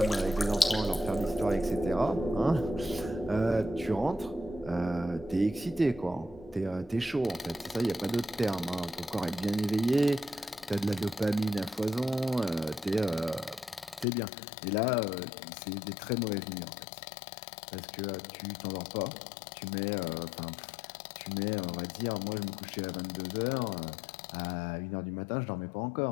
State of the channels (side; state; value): right; drops out; at 14.1 s